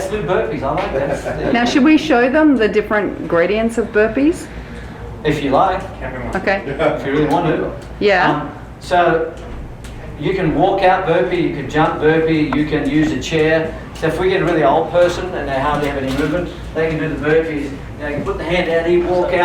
do burpees. I like that. Now, should we show them the different gradients of burpees? If you like, Okay. if you really want to. Yeah. So you can walk out burpee, you can jump burpee, you can use a chair. So if we get a really old person and they hardly have any movement, they can do the burpees. They can put the hand out here, walk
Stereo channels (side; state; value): both; identical; correlation 1.00